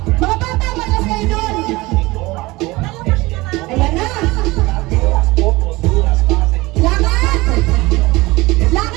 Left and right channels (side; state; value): left; quieter; 21.3 dB